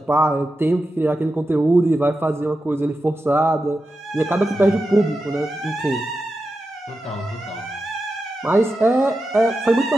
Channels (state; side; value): normal; both; correlation 0.90